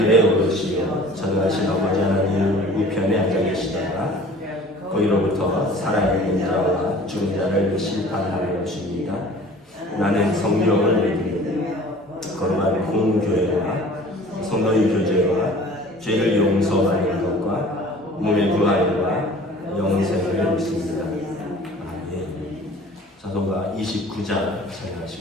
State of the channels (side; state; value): both; normal; correlation 0.47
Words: 오르시어 전능하신 아버지 하나님 우편에 앉아 계시다가 거기로부터 살아있는 자와 죽은 자를 심판하러 오십니다. 나는 성령을 믿으며 거룩한 공교회와 성도의 교제와 죄를 용서하는 것과 몸의 부활과 영생을 믿습니다. 찬송가 29장